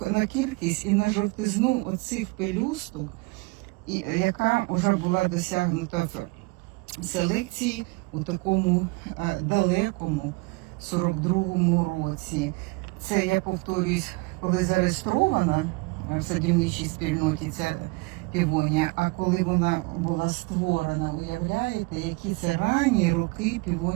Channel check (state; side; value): quieter; left; 25.8 dB